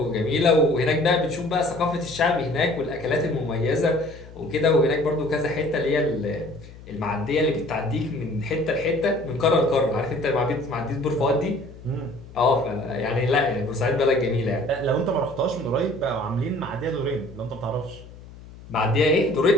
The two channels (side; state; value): left; noise; hum, 18 dB below the sound